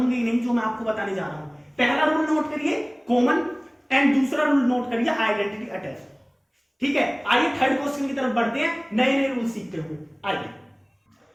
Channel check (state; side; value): identical; both; correlation 1.00